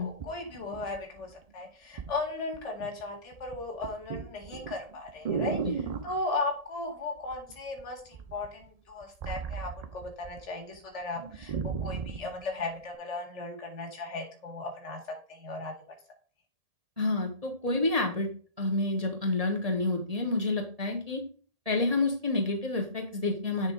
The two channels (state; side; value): late; left; 1.7 ms